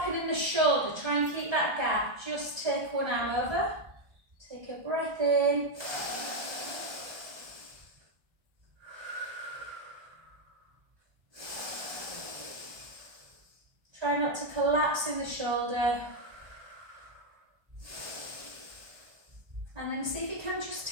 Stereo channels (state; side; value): late; left; 1.3 ms